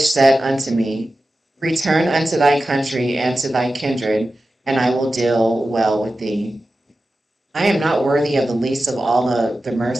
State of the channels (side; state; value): both; normal; correlation 0.93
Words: said unto me, Return unto thy country and to thy kindred, and I will deal well with thee. I am not worthy of the least of all the